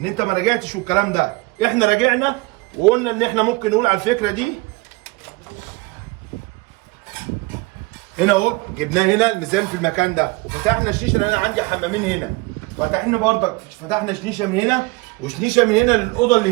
انت ما راجعتش والكلام ده. احنا راجعنا وقلنا ان احنا ممكن نقول على الفكره دي. هنا اهو جبناه هنا الميزان في المكان ده، وفتحنا الشيشه لان انا عندي حمامين هنا. فتحنا برضك فتحنا شنيشه من هنا وشنيشه من هنا للاوضه اللي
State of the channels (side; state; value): left; quieter; 24.5 dB